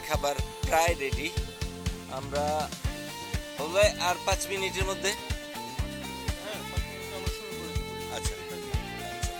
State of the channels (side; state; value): both; identical; correlation 1.00